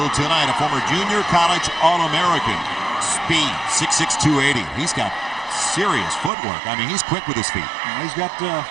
tonight, a former junior college All-American. Speed, 6'6", 280. He's got serious footwork. I mean, he's quick with his feet. He's got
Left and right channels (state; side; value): drops out; left; at 6.3 s